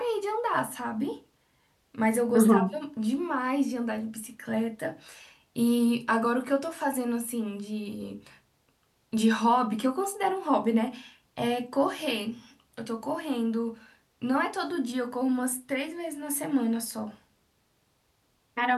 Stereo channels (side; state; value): both; identical; correlation 1.00